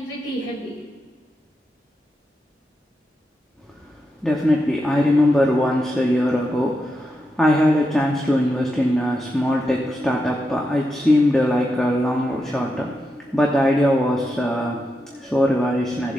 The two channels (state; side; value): normal; both; correlation 0.86